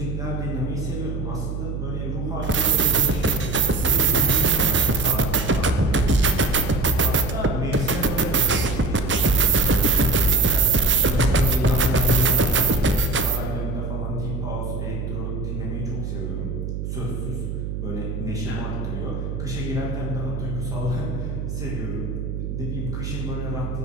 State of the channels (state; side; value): noise; right; hum, 5 dB below the sound